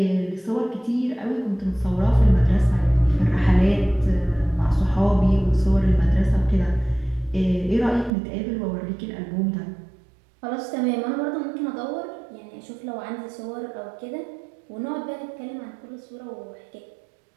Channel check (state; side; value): drops out; left; at 8.1 s